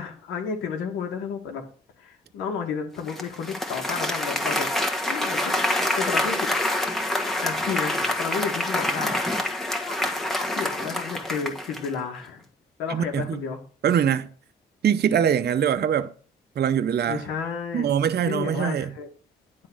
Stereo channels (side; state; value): both; normal; correlation 0.49